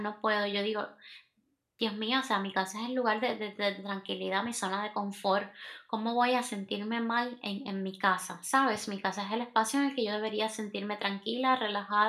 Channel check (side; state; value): both; identical; correlation 1.00